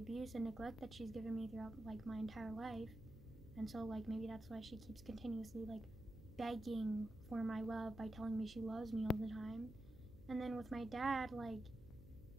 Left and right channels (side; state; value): right; noise; hum, 19 dB below the sound